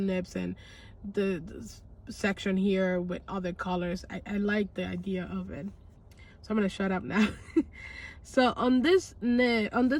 nibs and the section here with other colors. I like the idea of it. So I'm gonna shut up now. So on this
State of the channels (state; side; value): identical; both; correlation 1.00